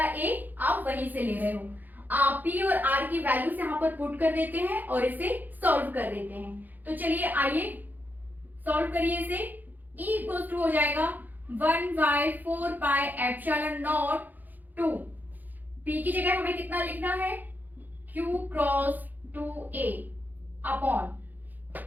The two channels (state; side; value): late; left; 0.085 ms